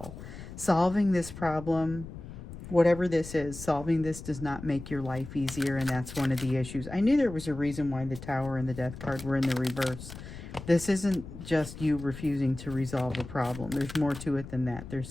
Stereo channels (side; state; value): left; noise; rumble, 12 dB below the sound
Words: Solving this problem, whatever this is, solving this does not make your life easier, and that's one of the issues. I knew there was a reason why the Tower and the Death card were in the reverse. This isn't just you refusing to resolve a problem. There's more to it than that. There's